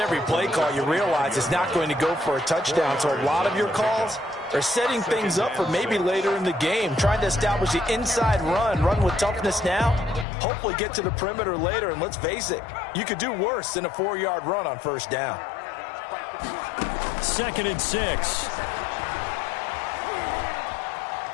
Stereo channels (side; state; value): right; drops out; at 10.2 s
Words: play call, you realize it's not going to go for a touchdown. So a lot of your calls are setting things up for maybe later in the game, trying to establish the inside run with toughness now, hopefully get to the perimeter later. And let's face it, you could do worse than a 4-yard run on first down. 2nd and 6.